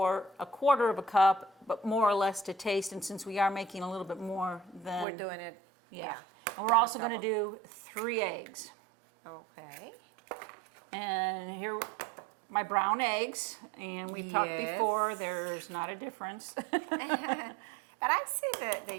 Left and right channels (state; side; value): drops out; left; at 5.1 s